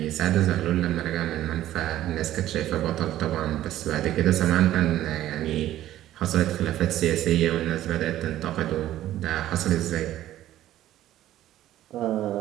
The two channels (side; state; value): left; quieter; 13.4 dB